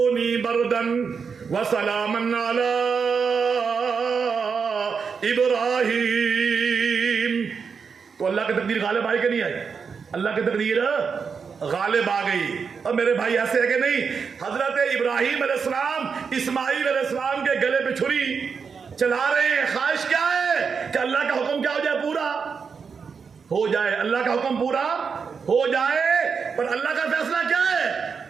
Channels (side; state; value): left; quieter; 5.8 dB